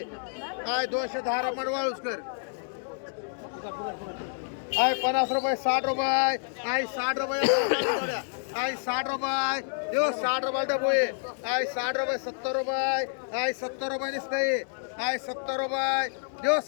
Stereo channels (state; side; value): silent; right; digital silence